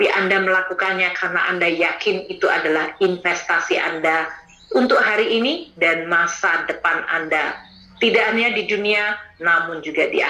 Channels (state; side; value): identical; both; correlation 1.00